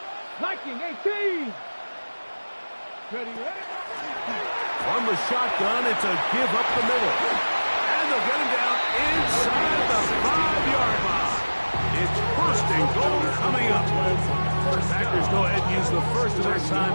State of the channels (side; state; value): both; inverted; correlation -1.00